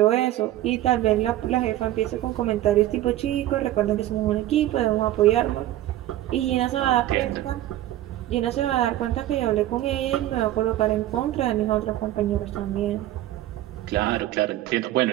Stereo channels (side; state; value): left; quieter; 14.3 dB